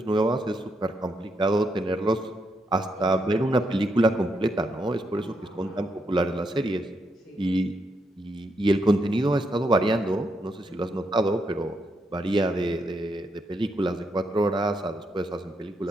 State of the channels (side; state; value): both; normal; correlation 0.80